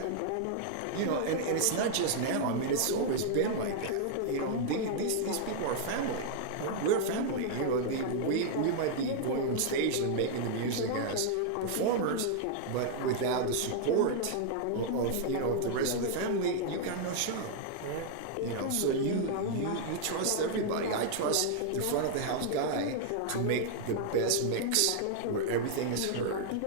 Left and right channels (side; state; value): both; different; correlation -0.01